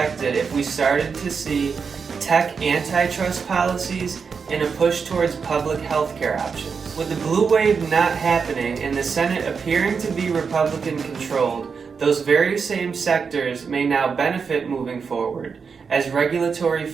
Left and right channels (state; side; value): quieter; left; 5.7 dB